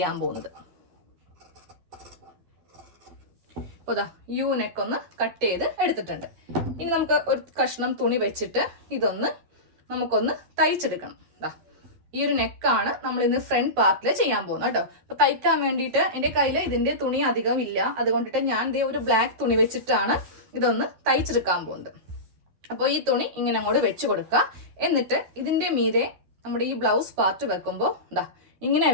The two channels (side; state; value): left; late; 11 ms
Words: പോകുന്നത്. അപ്പോൾ യു നെക്ക് ഒന്ന് കട്ട് ചെയ്ത് എടുത്തിട്ടുണ്ട്. ഇനി നമുക്ക് ഒരു കഷ്ണം തുണി വെച്ചിട്ട് ഇതൊന്ന് നമുക്കൊന്ന് തയ്ച്ചെടുക്കണം. ഈ ഒരു നെക്കാണ് നമ്മൾ ഇന്ന് ഫ്രണ്ട് പാർട്ടിൽ ചെയ്യാൻ പോകുന്നത് കേട്ടോ. അപ്പൊ തയ്ക്കാൻ വേണ്ടിയിട്ട് എൻ്റെ കയ്യിൽ ഇതിന്റെ തുണി അധികം ഇല്ല. അതുകൊണ്ടിട്ട് ഞാൻ ദേ ഒരു ബ്ലാക്ക് തുണി വെച്ചിട്ടാണ് ഇതൊന്ന് തയ്ച്ചെടുക്കാൻ പോകുന്നത്. അപ്പോൾ ഈ തുണി ഇങ്ങനെ അങ്ങോട്ട് വെച്ച് കൊടുക്കുക. എന്നിട്ട് ഇതിന്റെ മീതെ നമ്മുടെ ഈ ബ്ലൗസ് പാർട്ട് വെക്കുമ്പോൾ ഇങ്ങനെ